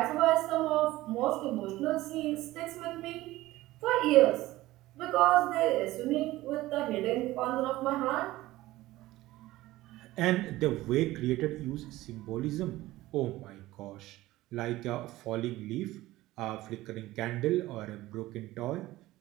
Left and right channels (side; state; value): left; quieter; 17.3 dB